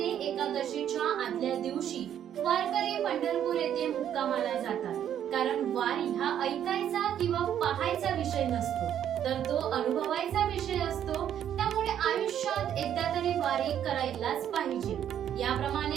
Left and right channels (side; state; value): left; quieter; 10.0 dB